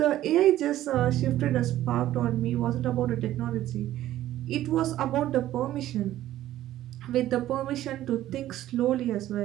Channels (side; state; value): left; quieter; 13.7 dB